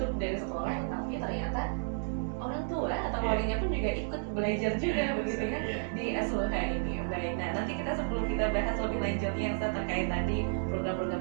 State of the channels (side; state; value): left; silent; digital silence